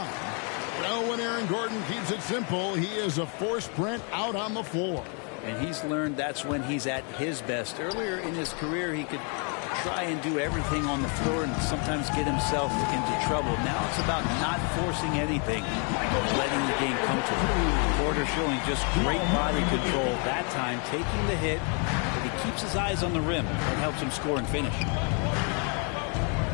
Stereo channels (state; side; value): quieter; right; 37.7 dB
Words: Well, when Aaron Gordon keeps it simple, he is a force sprint out on the floor. And he's learned that's when he's at his best. Earlier in his career, he could try and do everything on the floor and sometimes get himself into trouble. Now it's about not forcing anything, letting the game come to him. Porter showing just great body control that time, taking the hit, but he keeps his eyes on the rim. That helps him score and finish.